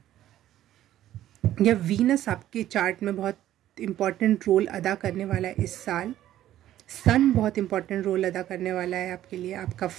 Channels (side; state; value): left; quieter; 12.9 dB